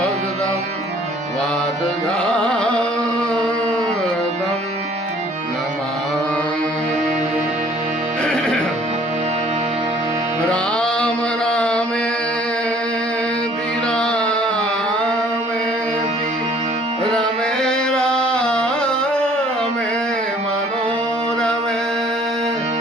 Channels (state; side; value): normal; both; correlation 0.56